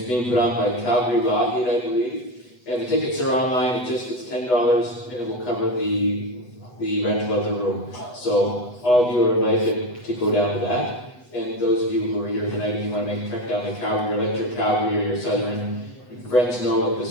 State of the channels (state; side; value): late; right; 8.1 ms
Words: being put on by Calgary Lockheed, I believe. And the tickets are online, it's $10, and it will cover the rental of the room. So all of you are invited to go down to that. And those of you who are here tonight, if you want to make a trek down to Calgary, or let your Calgary or your Southern friends know that